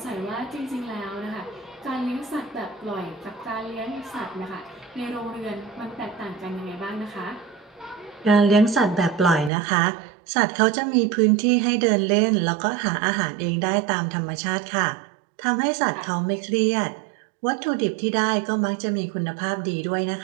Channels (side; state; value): left; drops out; at 9.5 s